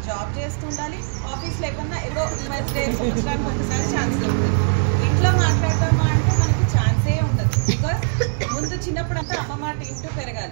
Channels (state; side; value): silent; left; digital silence